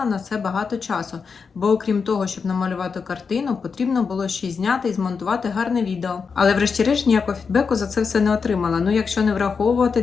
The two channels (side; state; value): right; quieter; 5.5 dB